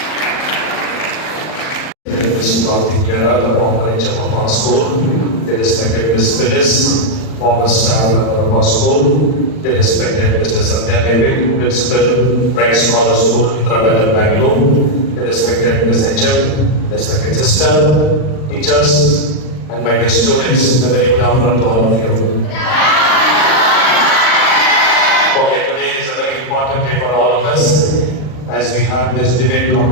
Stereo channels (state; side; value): late; right; 39 ms